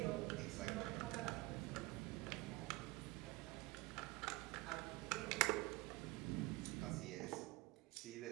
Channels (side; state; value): left; quieter; 22.0 dB